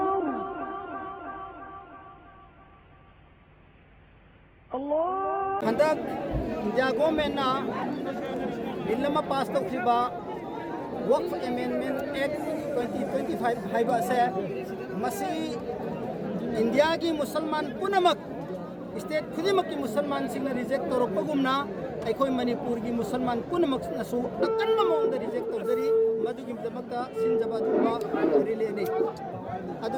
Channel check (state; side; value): identical; both; correlation 1.00